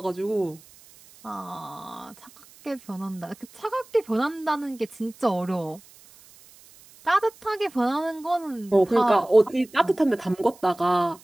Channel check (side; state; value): right; noise; hiss, 24 dB below the sound